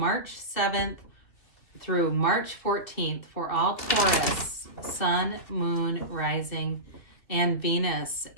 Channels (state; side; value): late; right; 2.8 ms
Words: 7th through March 14th for all Taurus, Sun, Moon, Rising, and Venus.